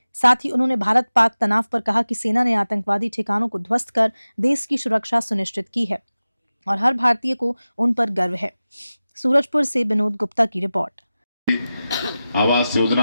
साथ ही उन्होंने भारत पाक तनाव पर कहा कि सेना ने आतंकवादी ठिकानों को ध्वस्त कर देश की सुरक्षा सुनिश्चित की है और हर भारतीय को उन पर गर्व है। सूरजपुर से विनोद गुप्ता की रिपोर्ट। आवास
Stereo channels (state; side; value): inverted; both; correlation -0.95